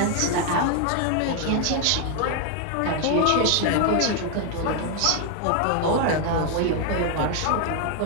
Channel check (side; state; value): both; different; correlation 0.00